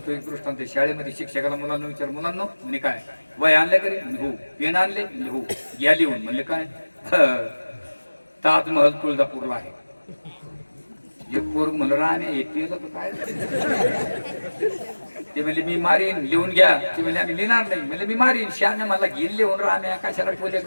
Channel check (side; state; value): both; inverted; correlation -1.00